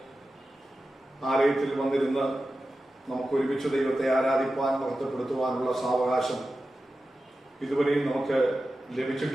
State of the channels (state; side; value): normal; both; correlation 0.93